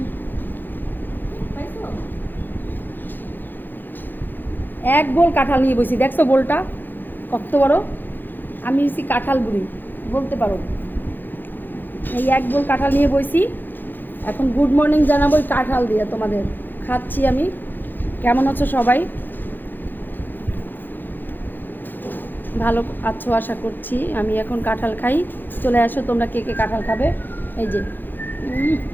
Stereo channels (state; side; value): late; right; 0.090 ms